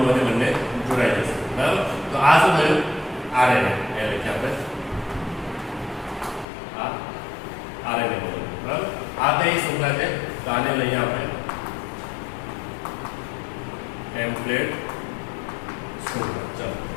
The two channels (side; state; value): right; drops out; at 6.5 s